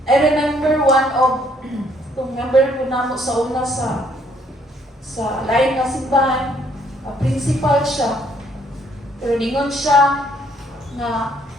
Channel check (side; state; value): both; normal; correlation 0.66